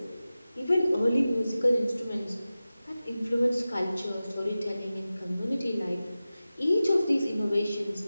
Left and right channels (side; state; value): both; inverted; correlation -0.95